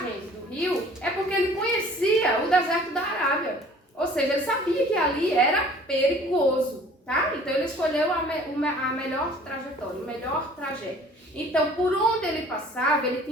do rio, é porque ele conhecia o deserto da Arábia. Ou seja, ele sabia que ali era perigoso, tá? Então, ele escolheu a melhor trajetória, o melhor trajeto. Então, por onde ele passava, ele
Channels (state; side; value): normal; both; correlation 0.51